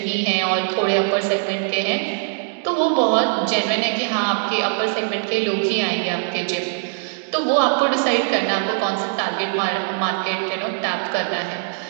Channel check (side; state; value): left; silent; digital silence